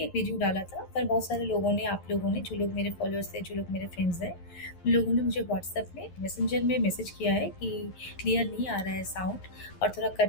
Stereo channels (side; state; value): right; late; 11 ms